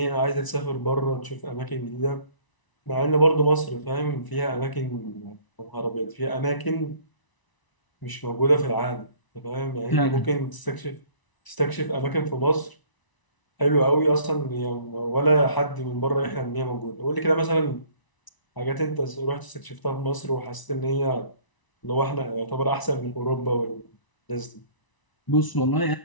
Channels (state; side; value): late; right; 1.0 ms